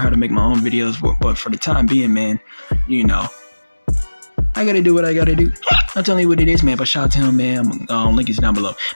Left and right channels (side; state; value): both; inverted; correlation -1.00